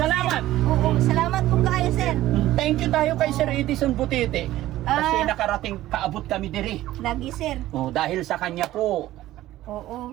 Sir. Oo, salamat po kayo, sir. Thank you tayo kay Sir Edison Butete. Kasi Ah. nakarating kaabot kami diri. Lagi, sir. Oh, dahil sa kanya po. Oo.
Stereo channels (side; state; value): left; quieter; 15.1 dB